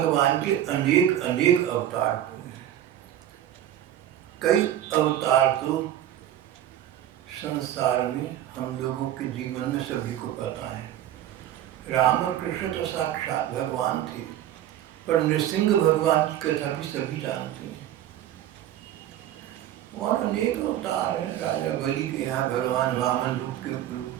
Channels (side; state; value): left; quieter; 11.8 dB